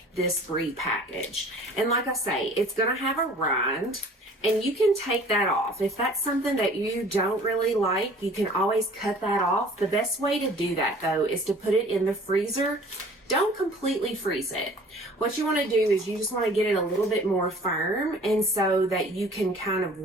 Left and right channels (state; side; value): normal; both; correlation 0.49